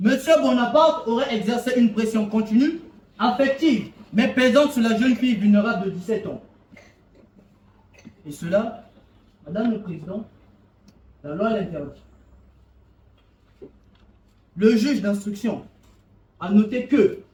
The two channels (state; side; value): identical; both; correlation 1.00